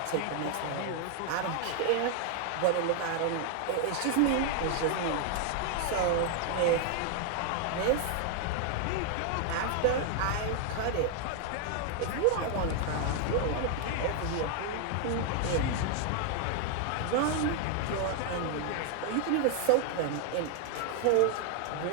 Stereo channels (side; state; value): both; different; correlation 0.00